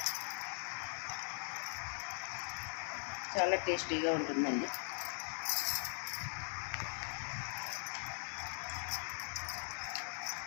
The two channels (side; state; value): right; silent; 50 dB below the other